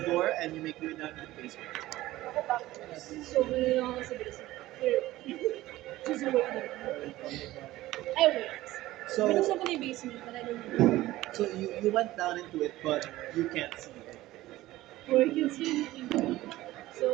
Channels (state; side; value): quieter; left; 16.6 dB